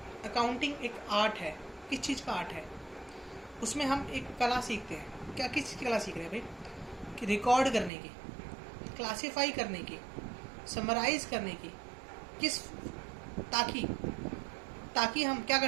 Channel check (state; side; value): drops out; left; at 7.9 s